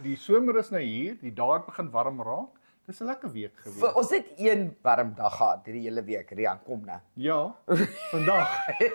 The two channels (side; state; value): both; inverted; correlation -1.00